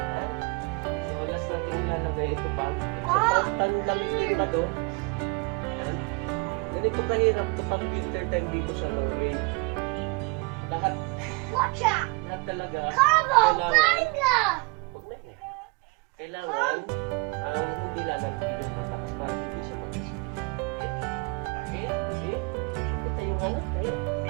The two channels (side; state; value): left; quieter; 28.3 dB